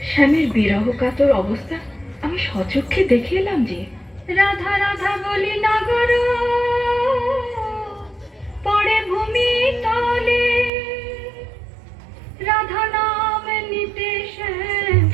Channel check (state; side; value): drops out; left; at 10.7 s